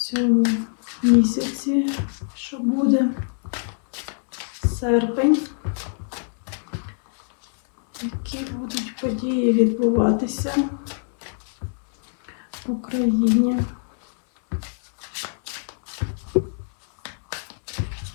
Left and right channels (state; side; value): silent; right; 62 dB below the other